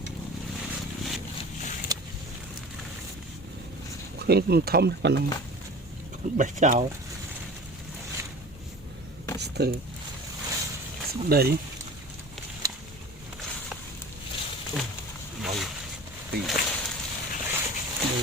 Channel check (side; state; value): both; normal; correlation 0.38